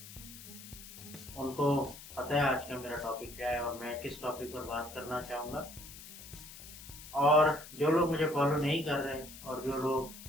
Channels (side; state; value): left; noise; hiss, 15 dB below the sound